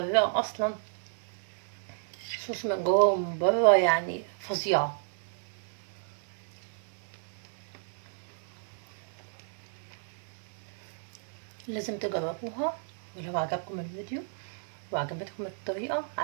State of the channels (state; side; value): silent; left; digital silence